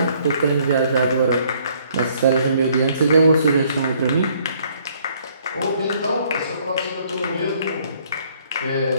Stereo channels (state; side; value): inverted; both; correlation -0.63